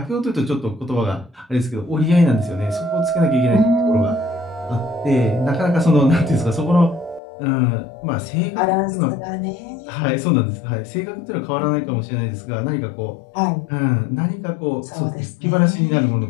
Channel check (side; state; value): right; drops out; at 7.2 s